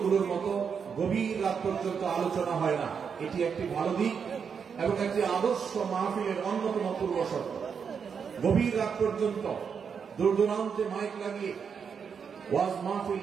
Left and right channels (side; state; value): left; quieter; 6.6 dB